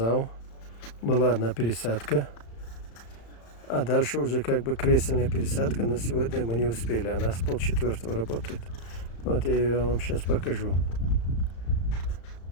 Была одна пересадка. А дальше уже как бы кресельная пересадка. Но сегодня мы не успели. Она с 3:30 работает. Вот я ее вам сейчас покажу.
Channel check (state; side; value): late; right; 35 ms